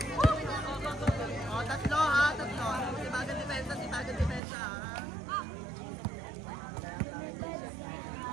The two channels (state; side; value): drops out; left; at 4.4 s